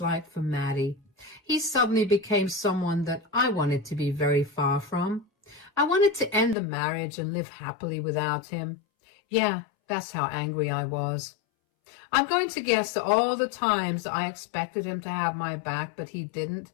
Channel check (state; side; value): drops out; right; at 6.6 s